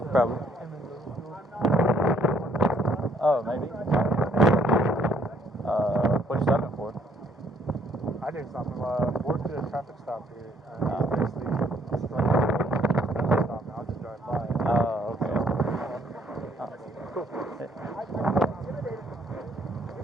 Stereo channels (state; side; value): normal; both; correlation 0.65